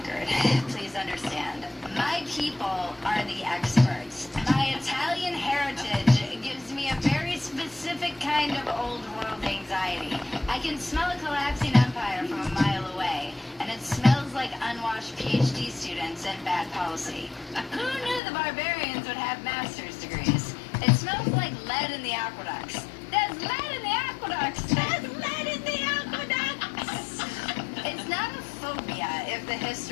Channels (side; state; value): right; drops out; at 18.2 s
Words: please understand. My people are the experts. My Italian heritage gives me a very specific kind of old world anxiety. I can smell a collapsing empire from a mile away, and it smells like unwashed PhD students and bad policy. Who knew the barbarians would have master's degrees? It smells like lead in the aqueducts. There's lead in the aqueducts! There's lead in the aqueducts! It's not a phobia if the